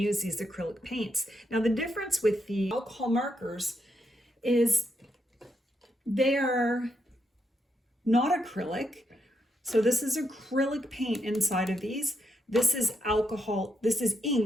these acrylic paints. Now the difference with the alcohol markers is they are not acrylic, So this is acrylic paint inside of these. This is alcohol, this is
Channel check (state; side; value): normal; both; correlation 0.80